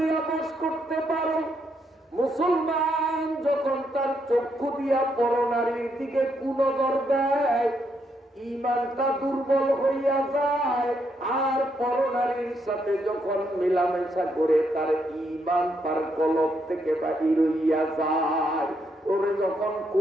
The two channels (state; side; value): normal; both; correlation 0.77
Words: বশ করতে পারো, মুসলমান যখন তার চক্ষু দিয়া পরনারীর দিকে কুনজর দেয়, ঈমানটা দুর্বল হইয়া যায়, আর পরনারীর সাথে যখন মেলামেশা করে তার ঈমান তার কলব থেকে বাহির হইয়া যায়। ওরে যখন